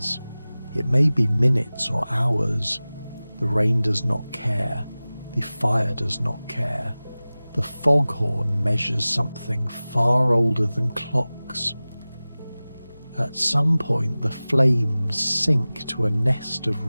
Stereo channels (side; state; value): both; inverted; correlation -0.98